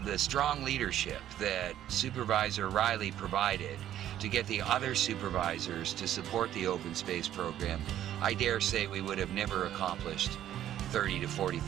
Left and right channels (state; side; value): quieter; left; 11.7 dB